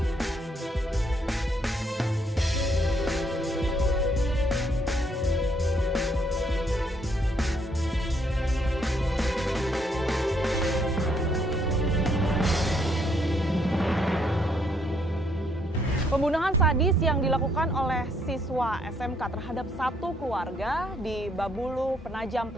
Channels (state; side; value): normal; both; correlation 0.70